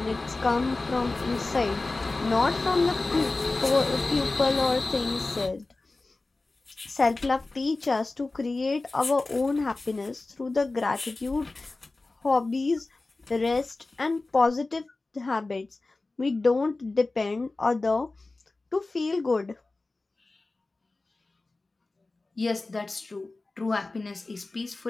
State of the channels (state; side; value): quieter; right; 3.3 dB